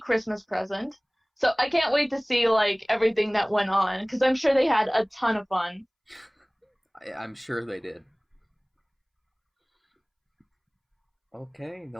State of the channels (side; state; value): both; identical; correlation 1.00